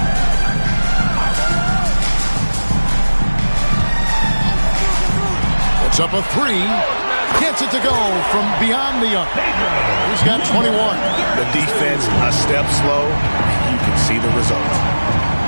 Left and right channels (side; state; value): both; inverted; correlation -1.00